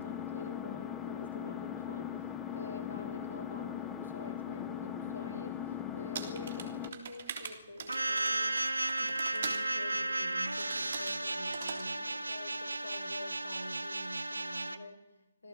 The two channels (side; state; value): both; inverted; correlation -0.72